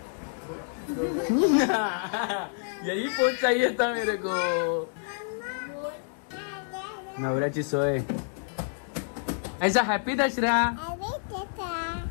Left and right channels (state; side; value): silent; right; 59 dB below the other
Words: यही पोच चाहिए था मेरे को. नवऱ्याची सोय. ऐसा हॅपी दसरा.